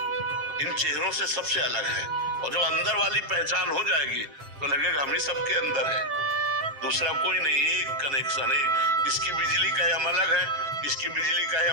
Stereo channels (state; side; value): late; left; 7.4 ms